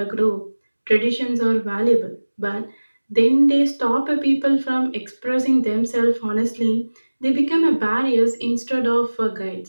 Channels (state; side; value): inverted; both; correlation -1.00